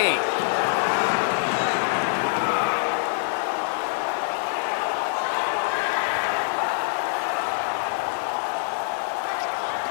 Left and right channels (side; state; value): right; silent; digital silence